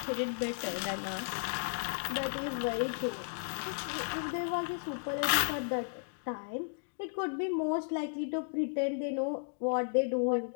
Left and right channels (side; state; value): right; silent; digital silence